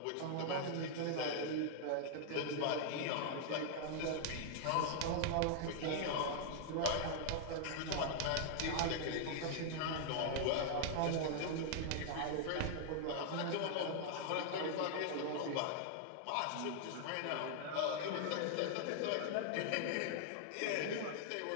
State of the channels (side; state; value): both; different; correlation 0.00